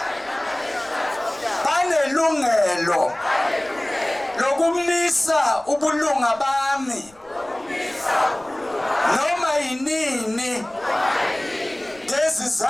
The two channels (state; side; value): noise; left; rumble, 29 dB below the sound